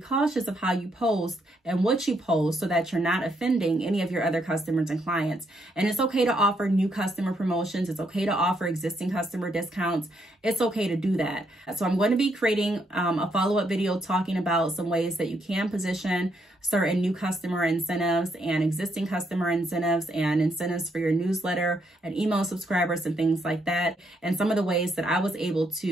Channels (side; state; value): both; normal; correlation 0.75